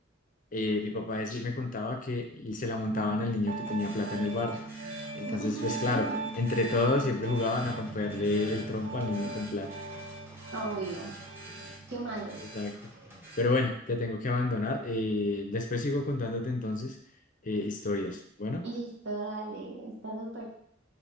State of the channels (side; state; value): both; normal; correlation 0.39